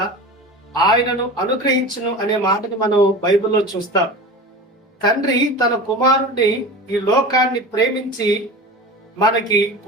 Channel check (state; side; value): normal; both; correlation 0.32